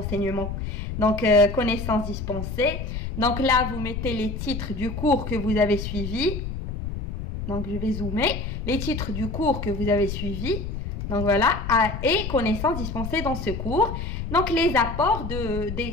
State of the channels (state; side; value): noise; left; rumble, 5 dB below the sound